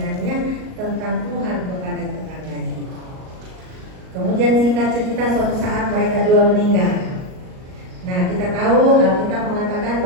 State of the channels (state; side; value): late; left; 38 ms